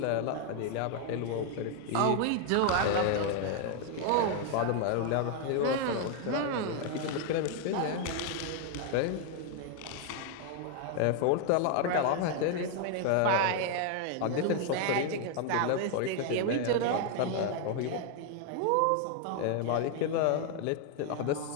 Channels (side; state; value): both; different; correlation 0.00